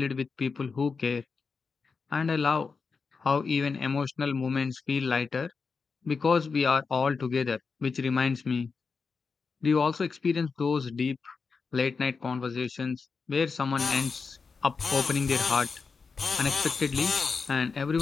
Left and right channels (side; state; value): right; quieter; 4.9 dB